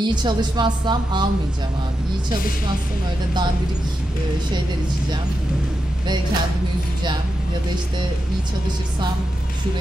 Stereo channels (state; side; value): normal; both; correlation 0.88